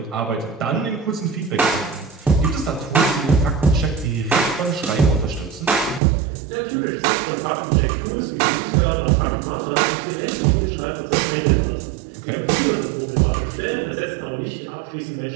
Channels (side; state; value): left; drops out; at 6.0 s